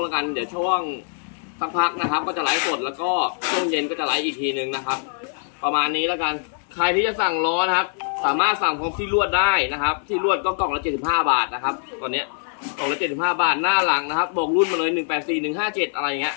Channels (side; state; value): right; silent; 57 dB below the other